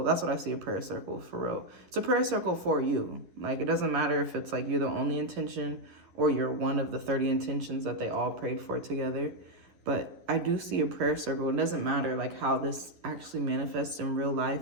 That's what I see a prayer circle for real. It's a prayer circle for you. Like, it doesn't matter if it's like you're the only intention or you're one of the 30 intentions that they all prayed for together. But I do see a prayer circle. It doesn't matter like how this actually manifests in real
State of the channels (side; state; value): left; late; 10 ms